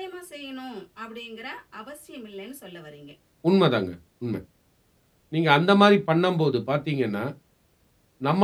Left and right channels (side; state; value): both; identical; correlation 1.00